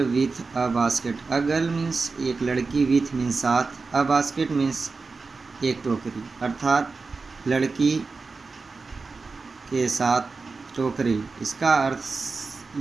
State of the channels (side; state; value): left; quieter; 4.2 dB